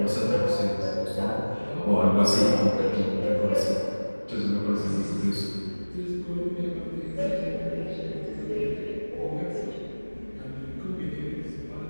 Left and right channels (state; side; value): inverted; both; correlation -1.00